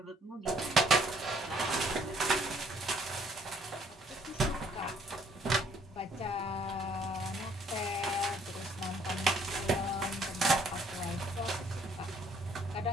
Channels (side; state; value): both; normal; correlation 0.62